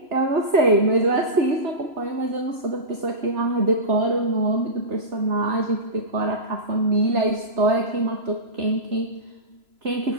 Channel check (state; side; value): late; left; 3.0 ms